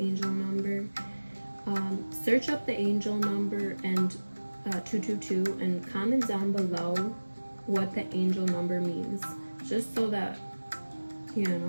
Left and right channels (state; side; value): inverted; both; correlation -1.00